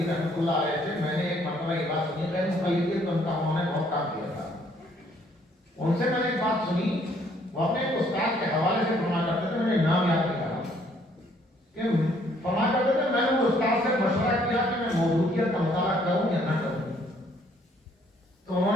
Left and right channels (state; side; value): normal; both; correlation 0.64